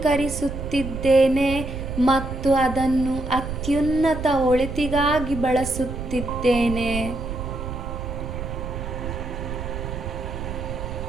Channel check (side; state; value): right; noise; rumble, 6 dB below the sound